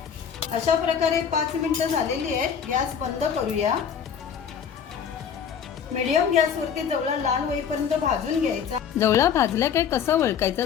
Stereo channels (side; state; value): right; quieter; 7.6 dB